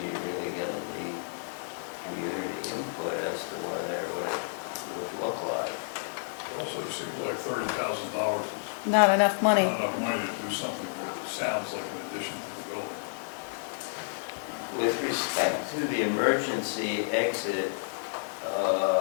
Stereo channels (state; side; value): silent; right; 58 dB below the other